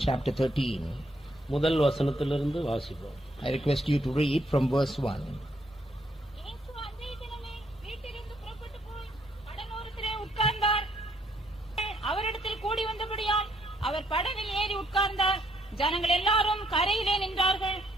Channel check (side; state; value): both; normal; correlation 0.71